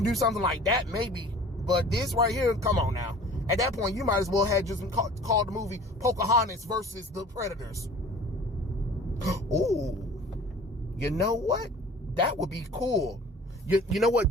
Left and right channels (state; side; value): normal; both; correlation 0.45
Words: do something like that, maybe. But this right here, come on now. At that point, you might as well have just called the movie Pocahontas versus the Predators. Ooh, you know what? That would be cool. You know